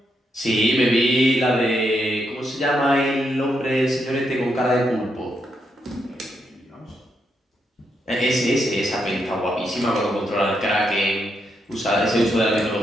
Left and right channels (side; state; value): both; normal; correlation 0.80